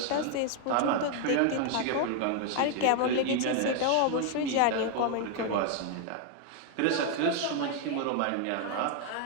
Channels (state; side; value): different; both; correlation 0.00